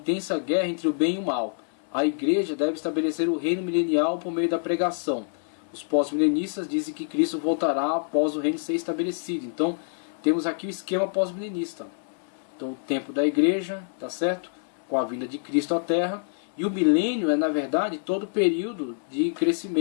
guerra entre o bem e o mal. A igreja deve estabelecer o reino milenial por meio da pregação. Os pós-milenistas dizem que Cristo voltará após o reino ser estabelecido. Então, temos aqui o esquema pós-milenista. Então, o tempo da igreja, tá certo? Com a vinda de Cristo à Terra. E o milênio é, na verdade, todo o período de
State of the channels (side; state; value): right; silent; 61 dB below the other